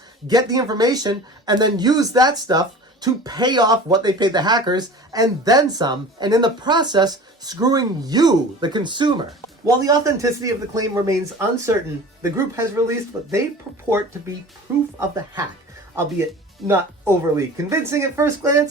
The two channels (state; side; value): normal; both; correlation 0.39